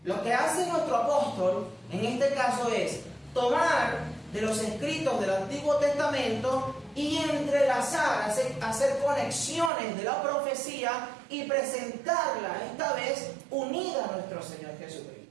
Lo que hace nuestro apóstol en este caso es tomar de los escritos del Antiguo Testamento y entrelazar, hacer conexiones de la profecía y presentarla esta vez unida a nuestro Señor Jesucristo.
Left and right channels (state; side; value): drops out; left; at 9.7 s